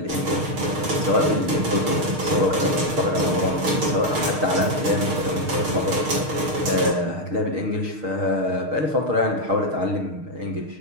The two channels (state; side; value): late; left; 6.5 ms